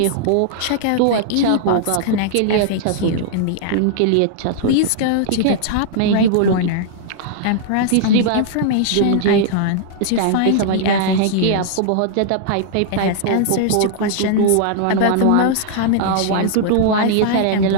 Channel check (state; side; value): different; both; correlation -0.01